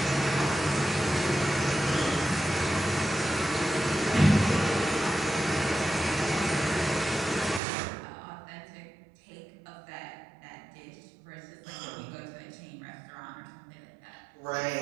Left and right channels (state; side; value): drops out; left; at 7.6 s